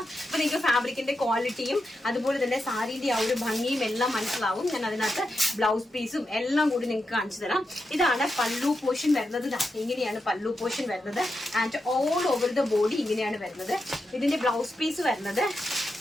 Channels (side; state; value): both; normal; correlation 0.87